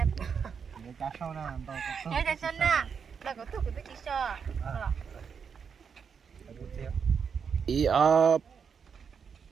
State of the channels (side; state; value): left; quieter; 6.5 dB